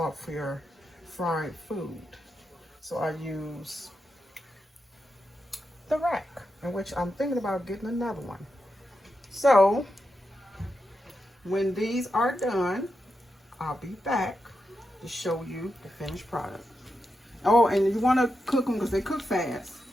your fried food. So I use the rack, in which I'm thinking about getting another one. So when these are done, I'll be back to show you the finished product. Oh, and you want to cook them because they cook fast.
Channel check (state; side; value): normal; both; correlation 0.87